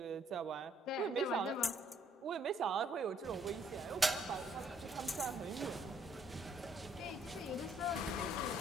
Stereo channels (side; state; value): both; normal; correlation 0.67